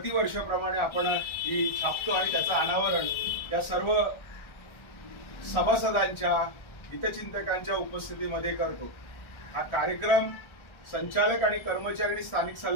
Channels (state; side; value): late; right; 1.4 ms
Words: आपण ही छापतो आणि त्याचं अनावरण या सर्व सभासदांच्या, हितचिंतकांच्या उपस्थितीमध्ये करतो। हा कार्यक्रम संचालक आणि कर्मचारी आणि स्थानिक